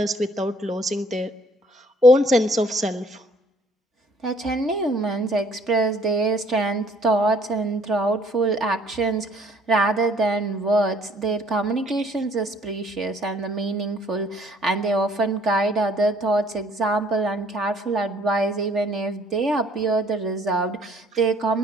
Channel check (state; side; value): normal; both; correlation 0.60